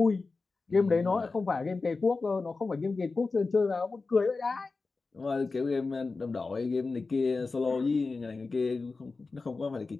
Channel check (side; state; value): right; quieter; 4.0 dB